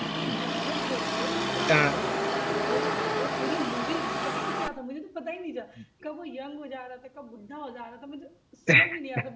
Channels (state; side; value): identical; both; correlation 1.00